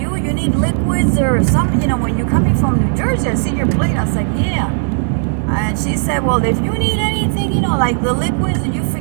need liquids or something, when you're coming from New Jersey, I see your plate. I was like, yeah. And she said, well, if you need anything, like the liquids, or you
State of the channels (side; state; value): left; silent; 69 dB below the other